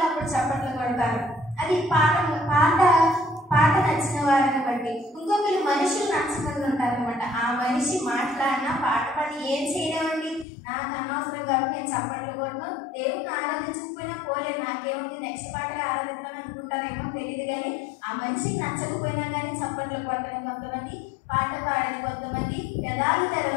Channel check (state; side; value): drops out; right; at 10.5 s